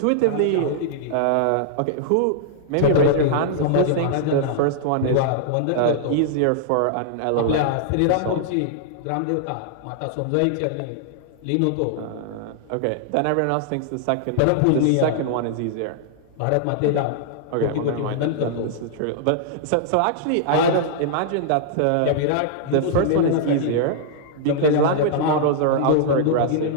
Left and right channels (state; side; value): different; both; correlation -0.01